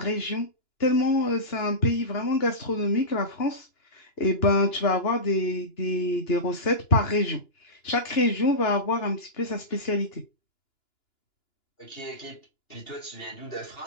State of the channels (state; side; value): late; right; 2.9 ms